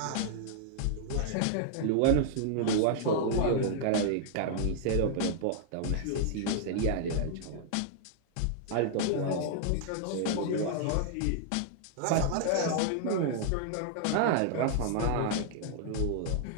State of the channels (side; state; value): both; different; correlation -0.01